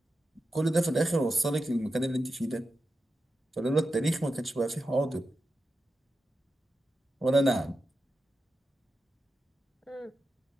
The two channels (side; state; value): both; normal; correlation 0.90